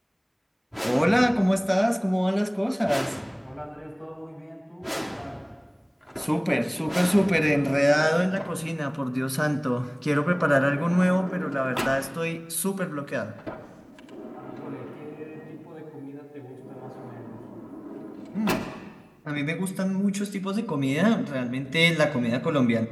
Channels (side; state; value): both; identical; correlation 1.00